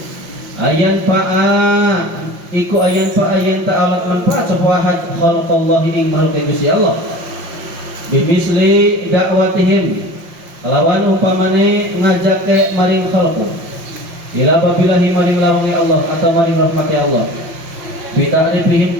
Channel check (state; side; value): late; left; 5.7 ms